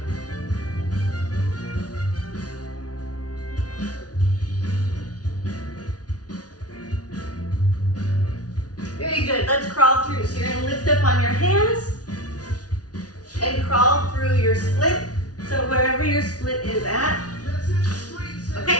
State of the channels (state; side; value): late; right; 0.68 ms